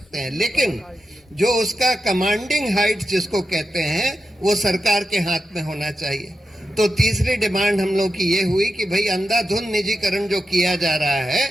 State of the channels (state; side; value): normal; both; correlation 0.89